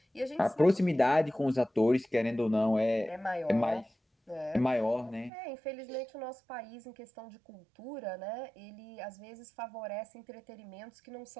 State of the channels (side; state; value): left; drops out; at 5.3 s